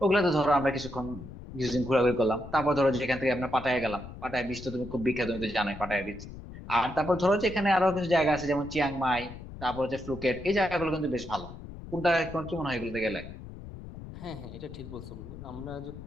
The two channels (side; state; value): left; noise; rumble, 13 dB below the sound